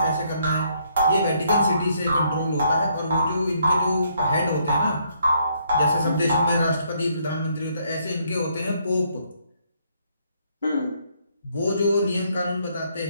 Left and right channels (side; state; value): both; inverted; correlation -0.70